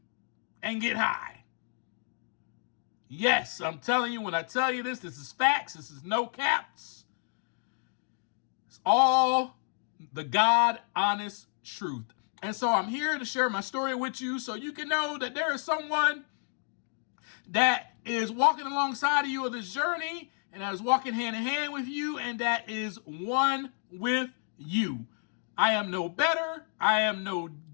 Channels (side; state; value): right; silent; 57 dB below the other